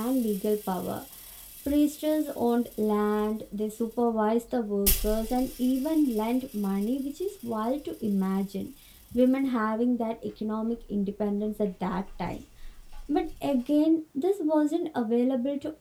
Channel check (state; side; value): identical; both; correlation 1.00